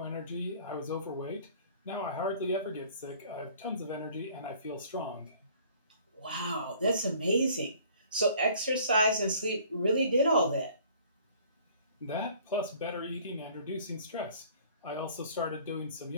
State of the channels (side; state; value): both; inverted; correlation -0.54